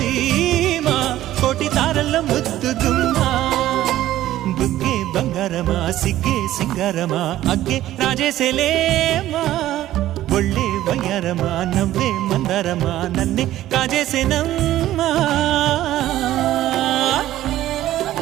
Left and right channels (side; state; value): left; quieter; 13.9 dB